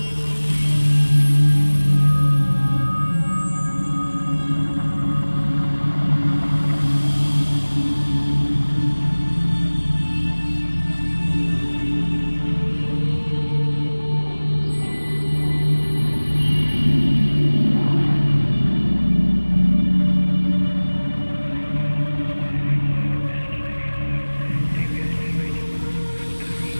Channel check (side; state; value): both; inverted; correlation -1.00